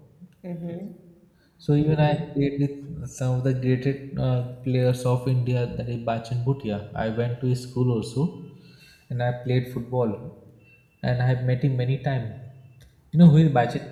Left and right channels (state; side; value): identical; both; correlation 1.00